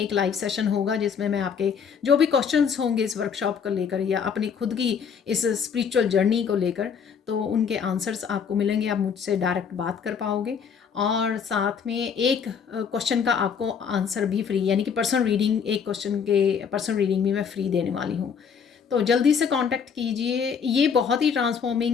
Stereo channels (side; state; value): right; quieter; 6.7 dB